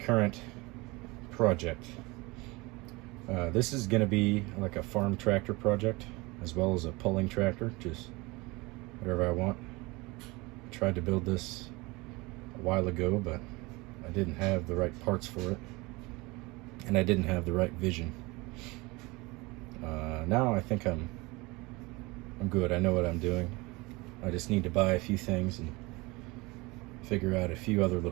project. This is going to be like a farm tractor project as well as a pulling tractor, just whatever I want. I tried to build this a while ago, but I didn't have the right parts for it and I didn't have the right vision. Now I think I'm good. I know what I'm doing. I just need to buy a few things and figure out a few other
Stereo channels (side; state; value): left; quieter; 24.0 dB